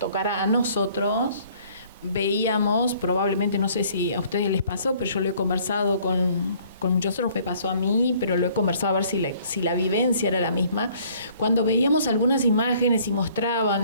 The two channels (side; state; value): both; inverted; correlation -0.58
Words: a nosotros, veíamos, probablemente, no sé si a ustedes les pasó, pero yo lo he conversado con muchos otros, me pasó a mí, pero lo he conversado a ver si la vivencia era la misma. Cuando veíamos algunas imágenes y